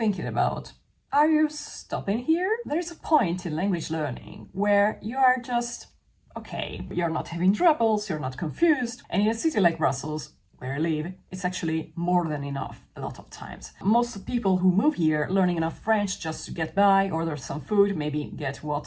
about. Are you stopping here? There's a point in language learning where you are just okay. You're not having troubles, you're not confused. And in a city like Brussels, where I live, it's actually more than enough a lot of times. Most people who move here learning enough French just to get by, order some food, maybe get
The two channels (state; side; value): identical; both; correlation 1.00